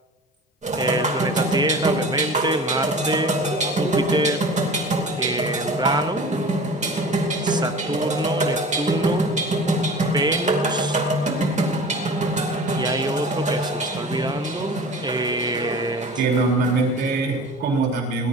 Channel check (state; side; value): normal; both; correlation 0.40